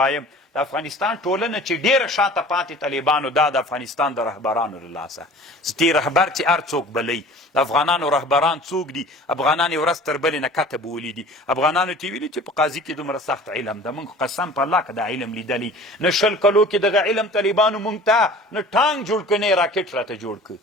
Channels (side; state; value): both; normal; correlation 0.44